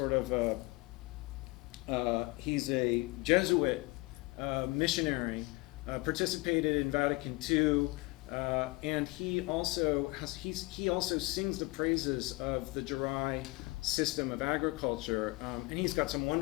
of he's a Jesuit missionary, participated in Vatican II, and he also sings the praises of the Jarai system of agriculture, and he's got some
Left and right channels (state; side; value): quieter; right; 23.7 dB